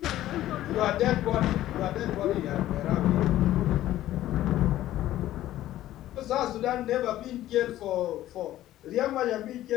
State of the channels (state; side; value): quieter; right; 14.0 dB